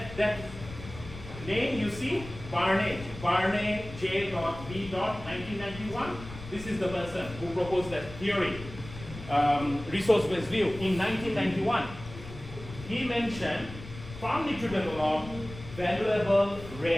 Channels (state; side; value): noise; left; rumble, 13 dB below the sound